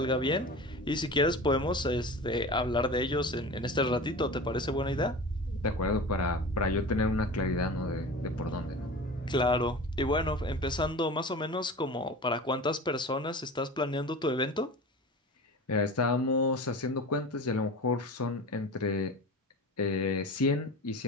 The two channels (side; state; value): both; normal; correlation 0.34